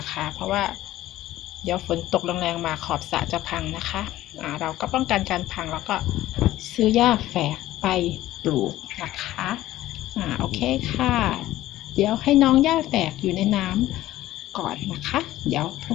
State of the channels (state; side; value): quieter; right; 15.1 dB